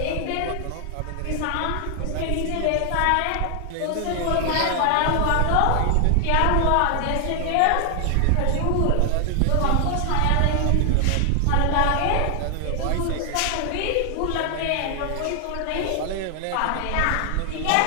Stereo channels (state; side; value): different; both; correlation 0.00